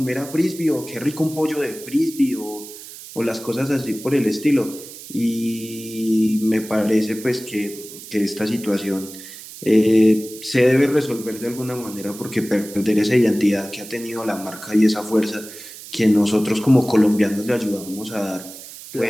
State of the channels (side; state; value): right; noise; hiss, 15 dB below the sound